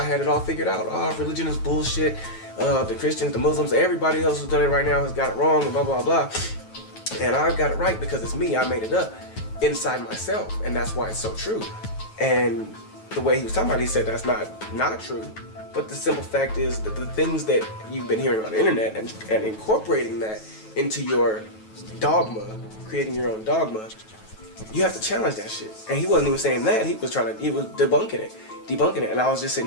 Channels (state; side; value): late; right; 9.2 ms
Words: had it all figured out. Oh, religion is bullshit. The Christians, the Muslims, everybody else who's done it right now has got it wrong and blah, blah, blah. And I got it right because it's me. I made it up inside myself. And that's why it's so true. And the way he was talking about it, he said that's not true. But the simple fact is that the things that you've been hearing on the internet and incorporating that into your dogma, creating your own dogma, you have to challenge that shit. And he wasn't even saying that. He was debunking it. And I was just